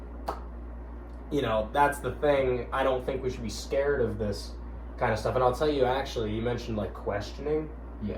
that's the thing. I don't think we should be scared of this kind of stuff. And I'll tell you, actually, you mentioned like questioning.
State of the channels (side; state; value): both; identical; correlation 1.00